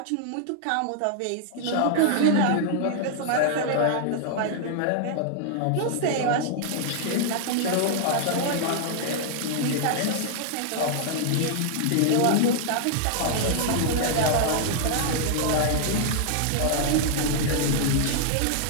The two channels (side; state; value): both; different; correlation -0.01